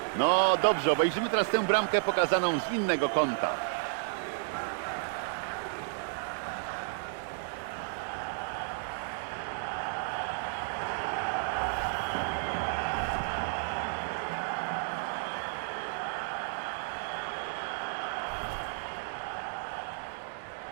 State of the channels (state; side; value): silent; left; digital silence